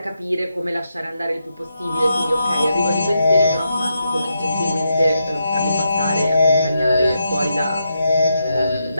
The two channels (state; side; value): inverted; both; correlation -0.83